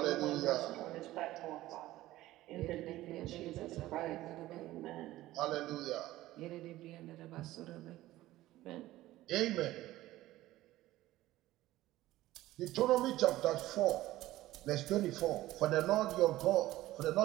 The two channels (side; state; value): left; quieter; 16.1 dB